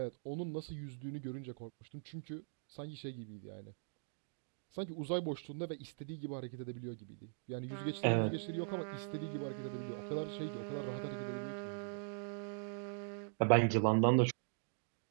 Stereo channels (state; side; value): silent; left; digital silence